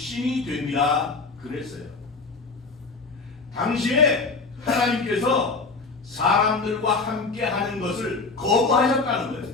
됩니다. 그랬어요. 당시에 하나님께서 사람들과 함께 하는 것을 거부하셨다는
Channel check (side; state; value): right; quieter; 4.1 dB